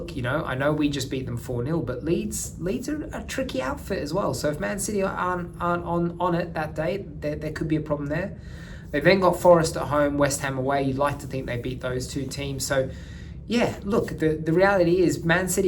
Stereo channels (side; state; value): both; identical; correlation 1.00